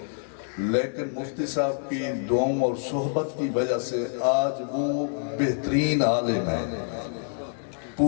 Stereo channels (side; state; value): right; silent; digital silence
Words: لیکن مفتی صاحب کی دعاؤں اور صحبت کی وجہ سے آج وہ بہترین عالم ہیں،